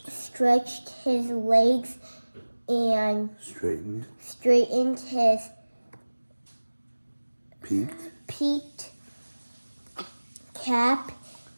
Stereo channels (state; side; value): inverted; both; correlation -1.00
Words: his legs and straightened his peaked cap,